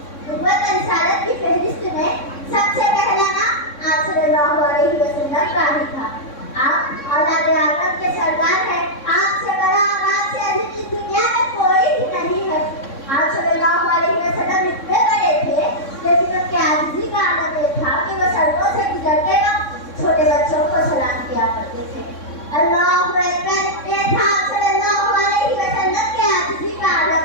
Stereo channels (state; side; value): late; right; 3.6 ms